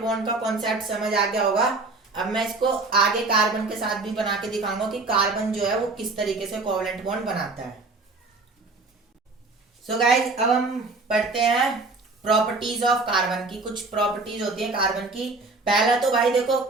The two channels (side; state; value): left; quieter; 3.5 dB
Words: का कॉन्सेप्ट समझ आ गया होगा. अब मैं इसको आगे कार्बन के साथ भी बना के दिखाऊंगा कि कार्बन जो है वो किस तरीके से कोवलेंट बॉन्ड बनाता है. सो गाइज अब हम पढ़ते हैं प्रॉपर्टीज ऑफ कार्बन की. कुछ प्रॉपर्टीज होती है कार्बन की. पहला तो भाई देखो